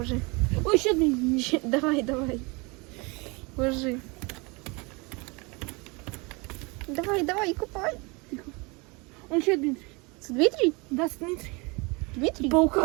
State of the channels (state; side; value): quieter; left; 27.8 dB